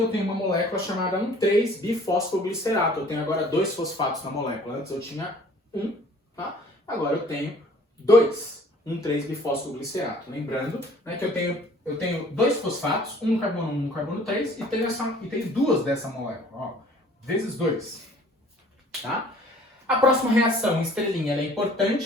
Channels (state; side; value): normal; both; correlation 0.53